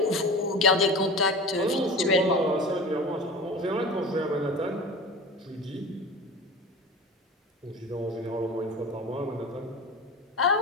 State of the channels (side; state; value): both; normal; correlation 0.33